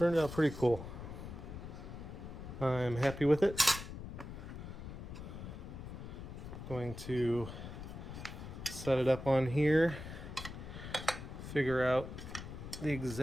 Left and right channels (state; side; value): noise; left; rumble, 10 dB below the sound